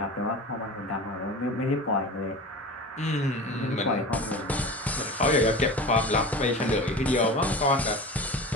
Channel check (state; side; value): normal; both; correlation 0.32